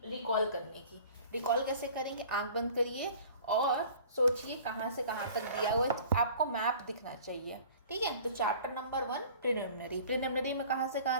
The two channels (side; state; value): both; inverted; correlation -0.47